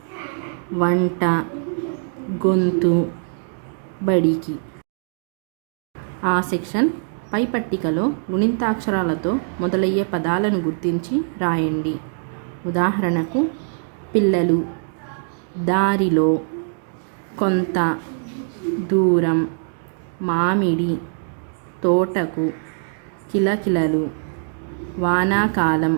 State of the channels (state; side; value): silent; left; digital silence